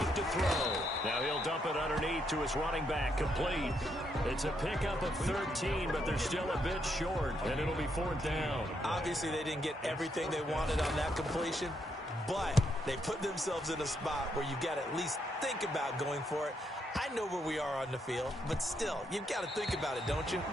to throw. Now he'll dump it underneath to his running back. Complete. It's a pickup of 13, but they're still a bit short, and it'll be 4th down. Obviously, they didn't get everything they wanted on that completion, but they put themselves in a spot where you've got to at least think about going for it. I know where we are on the field, but still, you've got to think about it, don't you?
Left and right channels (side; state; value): both; normal; correlation 0.77